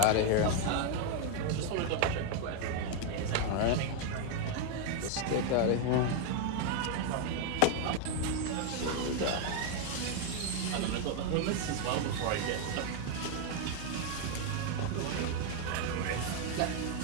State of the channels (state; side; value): different; both; correlation 0.01